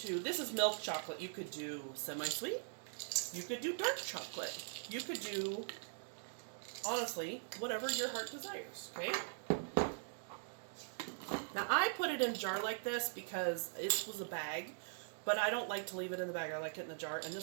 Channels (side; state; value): left; silent; digital silence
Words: this is milk chocolate. You could do semi-sweet. You could do dark chocolate. You could do, honestly, whatever your heart desires, okay? Now I put it in a jar like this because it was a bag. But I don't like to leave it in the bag. I like it in the jar. And